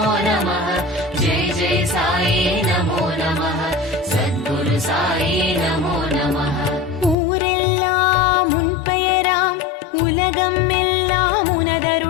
நமः. ஜெய் ஜெய் சாயி நமோ நமः. சத்குரு சாயி நமோ நமः. ஊரெல்லாம் உன் பெயராம், உலகம் எல்லாம்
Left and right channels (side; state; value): right; drops out; at 7.2 s